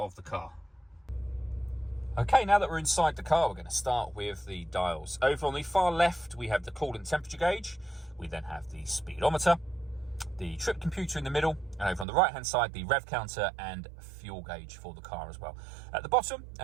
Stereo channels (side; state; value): left; drops out; at 12.1 s